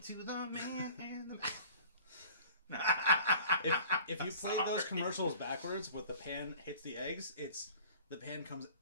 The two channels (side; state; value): both; inverted; correlation -0.45